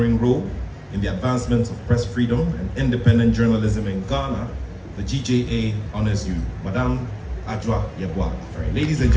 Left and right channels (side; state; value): both; identical; correlation 1.00